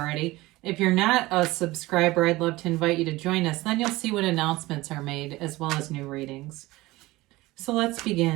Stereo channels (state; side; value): quieter; left; 19.5 dB